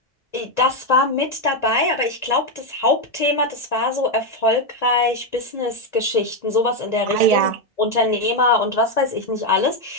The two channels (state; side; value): normal; both; correlation 0.05